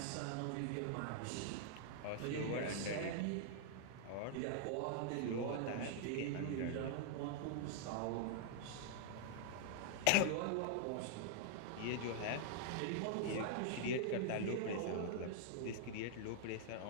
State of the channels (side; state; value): both; different; correlation -0.01